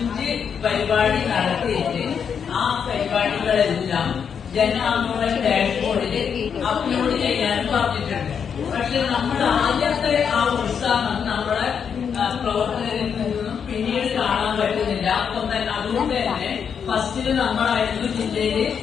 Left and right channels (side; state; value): right; quieter; 7.1 dB